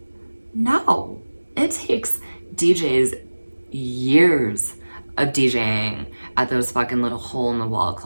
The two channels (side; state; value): both; inverted; correlation -1.00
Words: No, it takes DJs years of DJing at those fucking little hole-in-the-wall